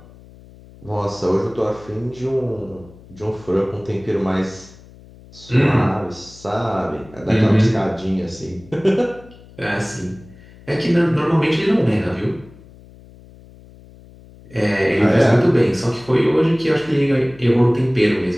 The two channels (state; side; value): noise; left; hum, 22 dB below the sound